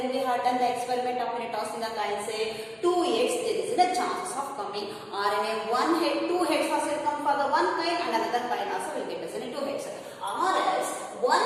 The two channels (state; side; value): identical; both; correlation 1.00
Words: we have done the experiment of tossing the coin, say 2 heads, there is a chances of coming, or in a one head, two heads also will come for the one coin and another coin also will get us in a two heads, or else